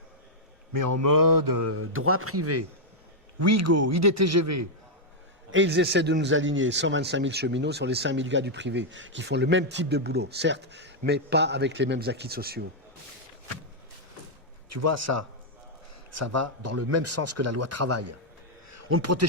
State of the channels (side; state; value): both; normal; correlation -0.04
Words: mais en mode droit privé. Ouigo, IDTGV. Et ils essaient de nous aligner 125 000 cheminots sur les 5 000 gars du privé, qui font le même type de boulot, certes, mais pas avec les mêmes acquis sociaux. Tu vois, ça va dans le même sens que la loi travail. On ne